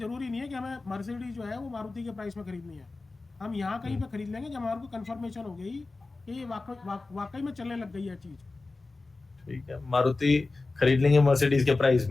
नहीं है कि हमें मर्सिडीज जो है वो मारुति के प्राइस में खरीदनी है। हम यहाँ कहीं पे खरीद लेंगे जब हमारे को कंफर्मेशन हो गई कि ये वाकई में चलने लग गई है चीज। ठीक है, मारुति खरीद लेंगे मर्सिडीज के प्राइस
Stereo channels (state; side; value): quieter; right; 3.5 dB